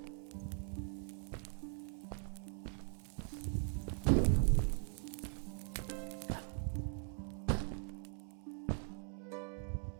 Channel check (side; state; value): left; silent; 50 dB below the other